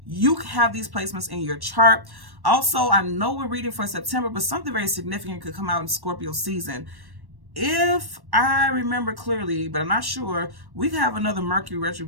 You have these placements in your chart. Also, I know we're reading for September, but something very significant could come out in Scorpio season. If I remember clearly, but I'm not sure, we have another Mercury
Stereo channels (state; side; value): late; left; 1.1 ms